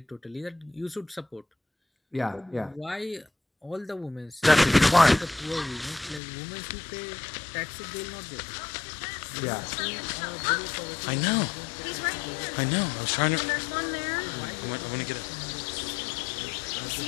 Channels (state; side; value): drops out; right; at 6.2 s